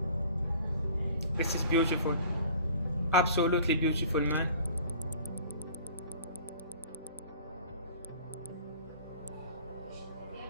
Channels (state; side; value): inverted; both; correlation -0.47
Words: This is beautiful, absolutely beautiful, man.